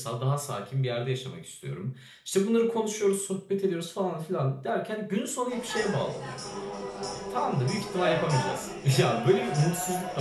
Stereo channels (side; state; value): both; identical; correlation 1.00